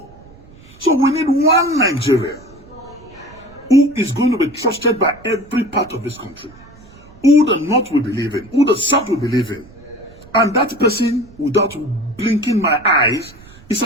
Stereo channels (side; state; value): right; noise; rumble, 23 dB below the sound